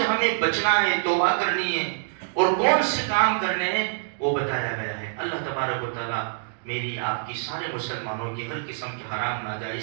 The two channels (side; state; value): left; silent; digital silence